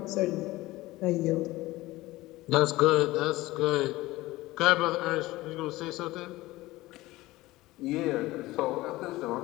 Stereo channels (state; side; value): quieter; right; 18.7 dB